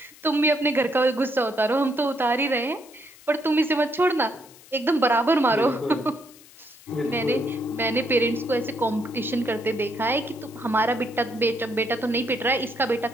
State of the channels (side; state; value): left; noise; hiss, 23 dB below the sound